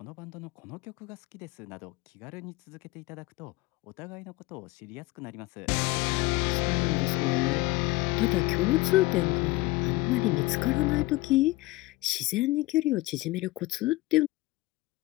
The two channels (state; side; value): quieter; right; 20.4 dB